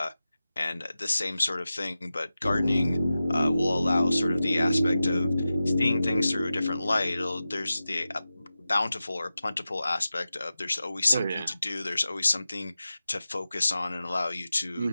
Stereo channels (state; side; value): inverted; both; correlation -0.93